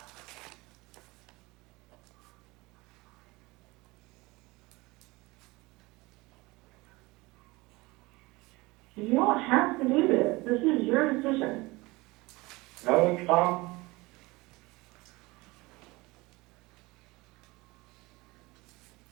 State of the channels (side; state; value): left; quieter; 22.5 dB